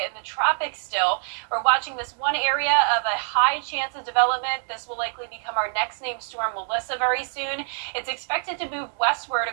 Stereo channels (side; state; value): left; silent; digital silence